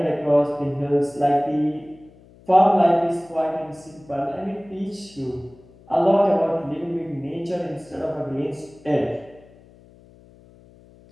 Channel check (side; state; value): left; noise; hum, 25 dB below the sound